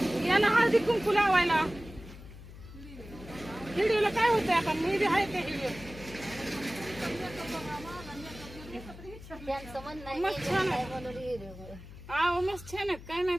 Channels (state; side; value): noise; left; hum, 16 dB below the sound